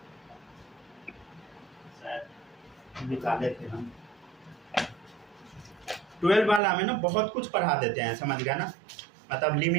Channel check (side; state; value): left; drops out; at 6.6 s